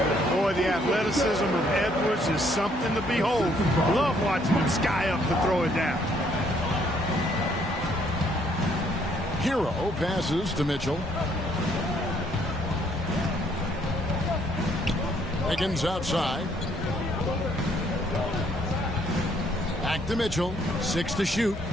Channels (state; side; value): normal; both; correlation 0.67